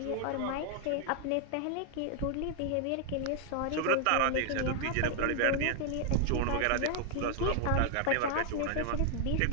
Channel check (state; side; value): different; both; correlation 0.00